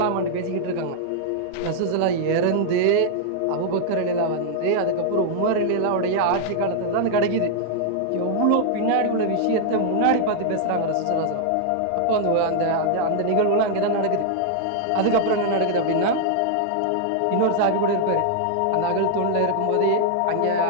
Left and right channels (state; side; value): different; both; correlation -0.01